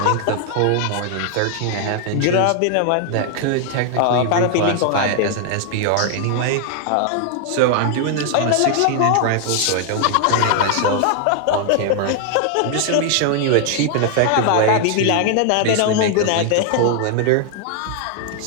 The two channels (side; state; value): both; different; correlation 0.00